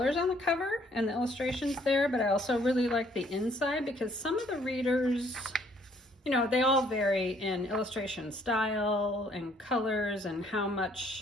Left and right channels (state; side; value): normal; both; correlation 0.64